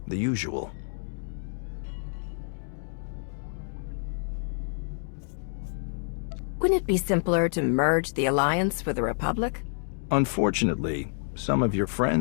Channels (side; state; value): right; silent; 59 dB below the other